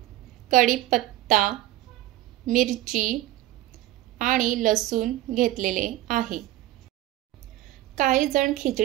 कढीपत्ता, मिरची आणि लसूण घेतलेले आहे। काही जण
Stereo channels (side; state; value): left; quieter; 15.8 dB